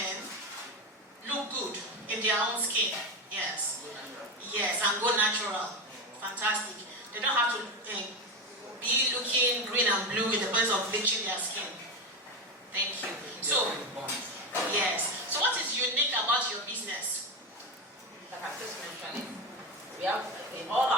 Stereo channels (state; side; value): normal; both; correlation 0.15